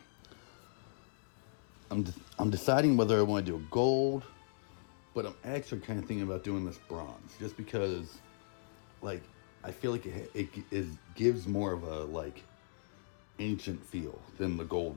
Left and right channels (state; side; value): silent; right; digital silence